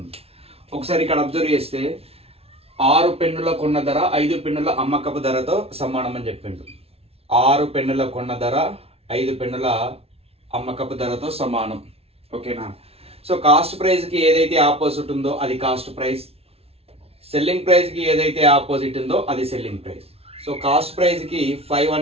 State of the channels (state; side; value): late; left; 0.29 ms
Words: ఒకసారి ఇక్కడ అబ్జర్వ్ చేస్తే 6 పెన్నుల కొన్న ధర 5 పెన్నుల అమ్మకపు ధరతో సమానం అని చెప్పిండు. 6 పెన్నుల కొన్న ధర 5 పెన్నుల అమ్మకపు ధరతో సమానం. ఓకేనా? సో కాస్ట్ ప్రైస్ కి ఏదైతే ఆపోజిట్ ఉందో అది కాస్ట్ ప్రైస్, సెల్లింగ్ ప్రైస్ కి ఏదైతే ఆపోజిట్ ఉందో అది selling price. So cost price కి 5